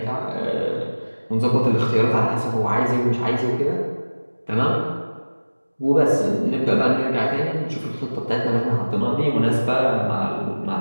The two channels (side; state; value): both; inverted; correlation -1.00